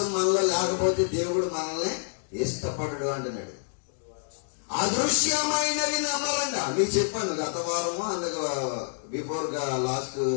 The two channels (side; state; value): right; silent; digital silence